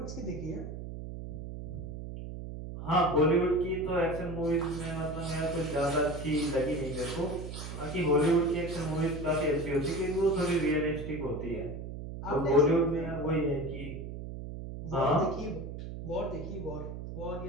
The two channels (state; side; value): noise; right; hum, 8 dB below the sound